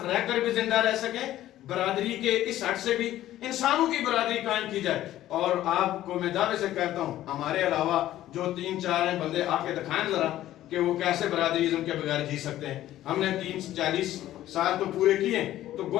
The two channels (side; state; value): right; quieter; 13.7 dB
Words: رہ کر بھی زندہ رہ سکیں، برادری کے اس حد سے بھی انسانوں کی برادری قائم کی جائے. اور آپ کو میں دعوے سے کہتا ہوں ہمارے علاوہ جو 3-4 ہیں بندے آ کے دکھائیں ذرا کہ وہ کیسے برادری ازم کے بغیر جی سکتے ہیں. ہم نے 30-40 سال تو پورے کیے، تو